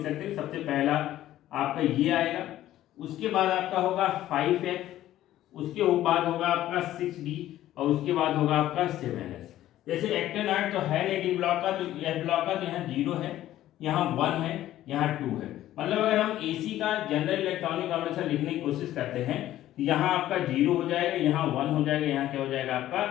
सकते हैं। सबसे पहला आपका ये आएगा, उसके बाद आपका होगा 5F, उसके बाद होगा आपका 6D, और उसके बाद होगा आपका 7S। जैसे एक्टेनाइड तो है नहीं डी ब्लॉक का, तो एफ ब्लॉक का, तो यहाँ 0 है, यहाँ 1 है, यहाँ 2 है। मतलब अगर हम AC का जनरल इलेक्ट्रॉनिक कॉन्फ़िगरेशन लिखने की कोशिश करते हैं, यहाँ आपका 0 हो जाएगा, यहाँ 1 हो जाएगा, यहाँ क्या हो जाएगा आपका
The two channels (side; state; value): right; quieter; 13.6 dB